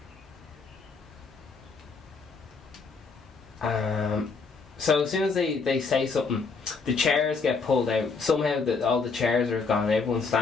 So as soon as they say something, the chairs get pulled out. Somehow all the chairs are gone, everyone's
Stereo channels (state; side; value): quieter; right; 4.7 dB